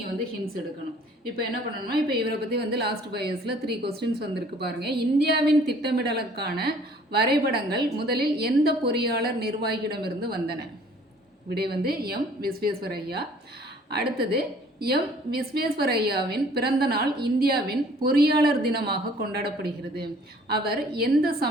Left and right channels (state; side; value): normal; both; correlation 0.55